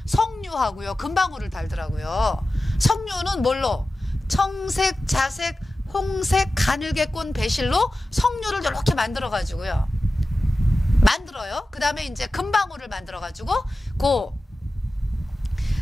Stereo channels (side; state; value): both; normal; correlation 0.94